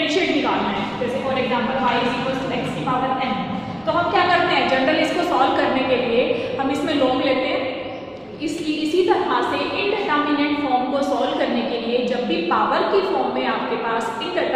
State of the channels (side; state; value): both; identical; correlation 1.00